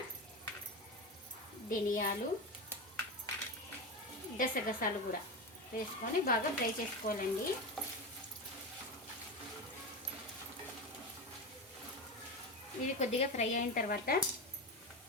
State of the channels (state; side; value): normal; both; correlation 0.19